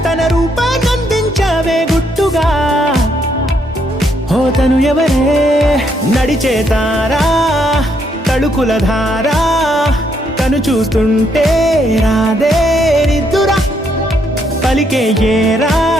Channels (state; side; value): normal; both; correlation 0.74